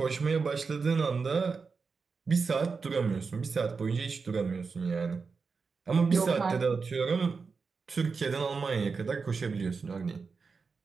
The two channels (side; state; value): left; quieter; 4.9 dB